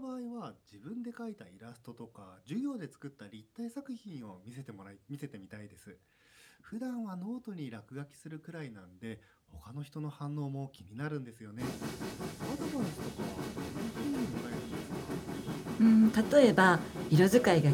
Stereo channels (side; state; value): both; identical; correlation 1.00